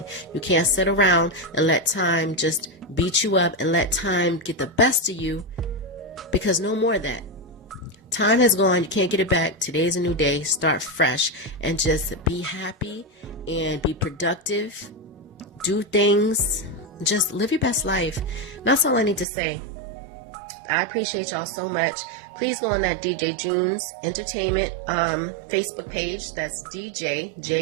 You can't sit around and let time just beat you up and let time get the best of you, because no more of that. Time has gone. You can't get it back. Today's a new day. Start fresh and just be happy and be productive. Do things. Just live your best life. That's all I need to say. I appreciate y'all so much. Please go on that DJ Junes Entertainment Facebook page. That's DJ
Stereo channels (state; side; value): drops out; left; at 19.2 s